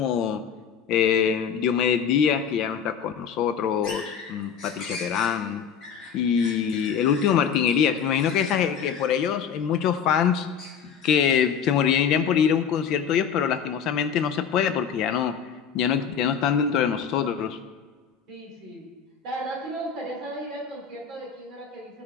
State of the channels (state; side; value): quieter; right; 7.4 dB